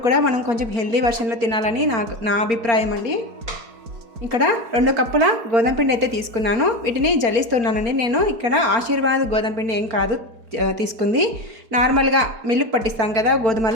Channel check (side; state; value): left; late; 4.4 ms